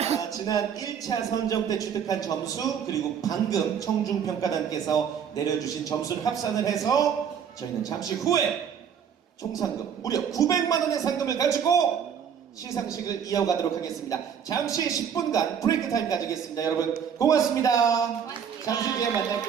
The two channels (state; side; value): quieter; left; 7.8 dB